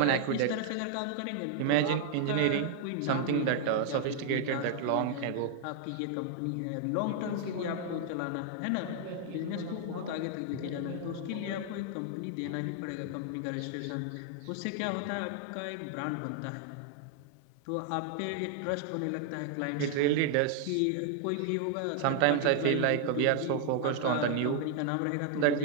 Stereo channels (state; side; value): different; both; correlation 0.00